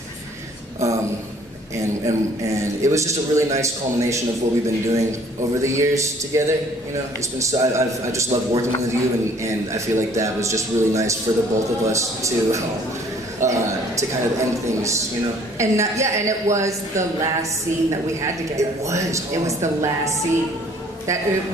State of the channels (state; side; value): normal; both; correlation 0.57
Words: it was just a really nice culmination of what we've been doing over the years together. You know, it's been so I just love working with you, and I feel like that was just really nice for the both of us to kind of end things, you know. And and it was the last scene that we had together. It was. It was the last scene. That it